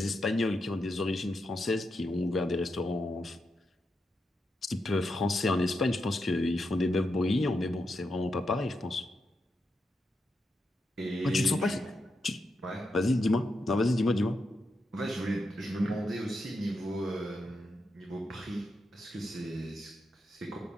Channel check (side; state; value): both; normal; correlation 0.85